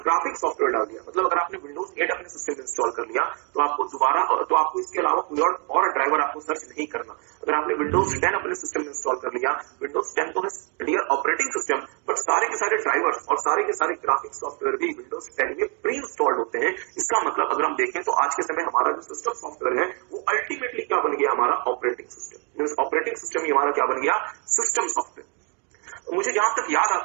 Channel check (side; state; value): left; quieter; 35.5 dB